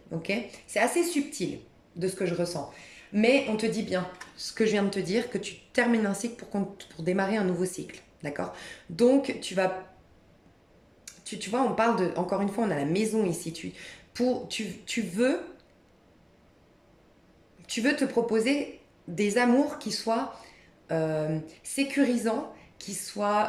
Ok. C'est assez subtil de ce que je ressens. Mais on te dit bien ce que je viens de te dire, que tu termines un cycle pour démarrer un nouveau cycle. D'accord. Donc, tu vois, on parle de, encore une fois, on a la maison ici. Tu veux te proposer des amours qui soient sécurisants, qui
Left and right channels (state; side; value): identical; both; correlation 1.00